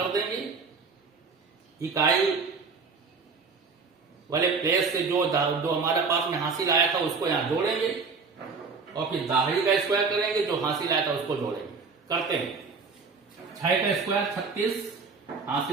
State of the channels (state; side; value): quieter; left; 4.8 dB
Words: देंगे, इकाई वाले प्लेस से जो हमारे पास में हासिल आया था उसको यहां जोड़ेंगे और फिर दाहिने का स्क्वायर करेंगे, जो हासिल आया था उसको जोड़ेंगे। करते हैं 6 का स्क्वायर 36